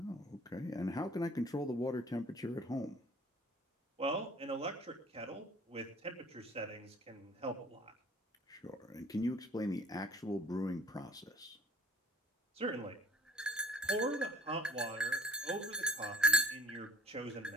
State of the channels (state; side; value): normal; both; correlation 0.48